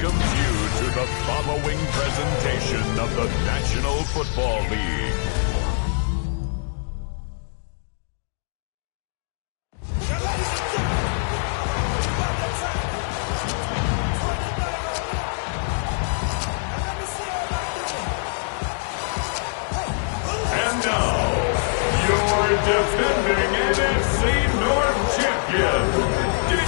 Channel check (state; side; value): silent; right; digital silence